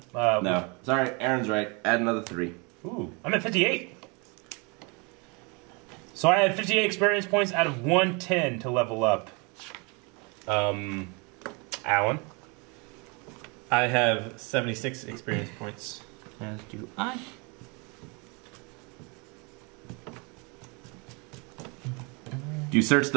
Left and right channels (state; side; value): quieter; left; 30.8 dB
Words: No. Sorry, Aaron's right. Add another 3. Ooh, I'm at 58. So I had 58 experience points out of 110 to level up. Alan? I have 76 experience points. As do I. Do you search